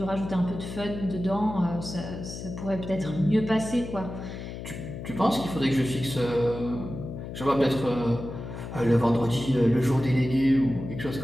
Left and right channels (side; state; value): left; noise; hum, 9 dB below the sound